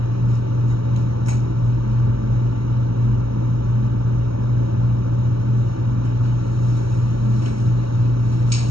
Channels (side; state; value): left; late; 0.75 ms